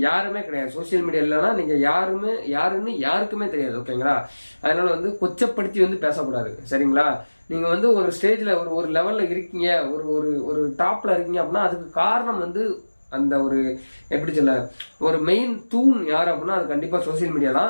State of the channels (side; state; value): both; inverted; correlation -1.00